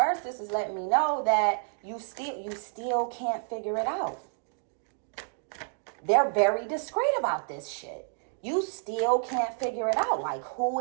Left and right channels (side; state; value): left; silent; 58 dB below the other